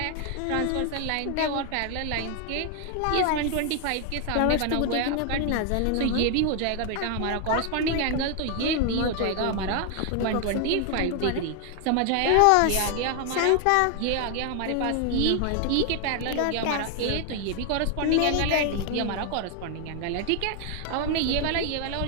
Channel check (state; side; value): different; both; correlation 0.00